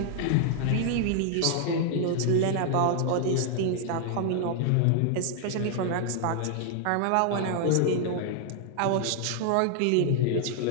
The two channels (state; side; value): different; both; correlation 0.00